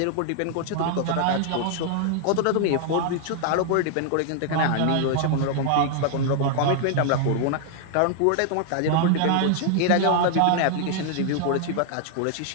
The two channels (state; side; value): different; both; correlation 0.00